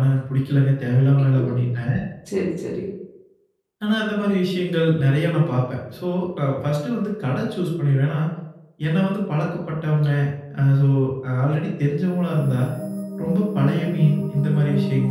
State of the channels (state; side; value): identical; both; correlation 1.00